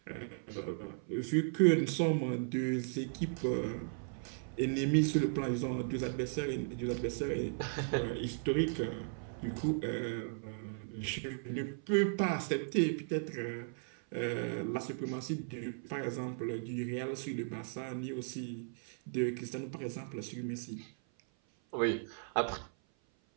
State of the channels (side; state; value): left; silent; 54 dB below the other